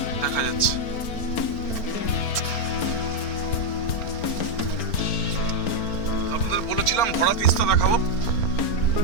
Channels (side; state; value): right; late; 4.4 ms